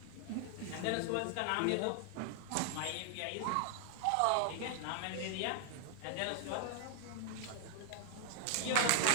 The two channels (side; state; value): both; different; correlation -0.01